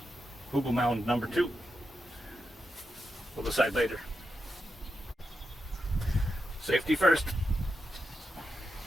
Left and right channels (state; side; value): normal; both; correlation 0.87